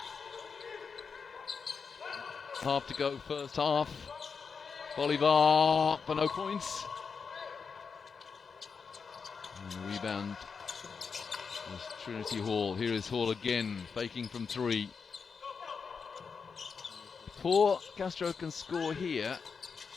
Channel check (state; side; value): quieter; right; 5.6 dB